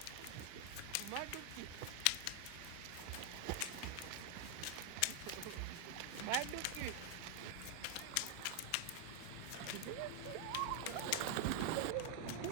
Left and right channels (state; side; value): different; both; correlation 0.00